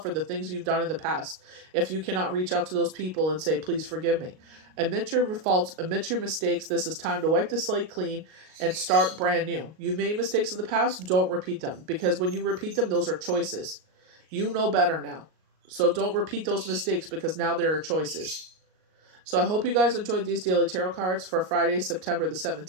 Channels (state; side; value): late; left; 38 ms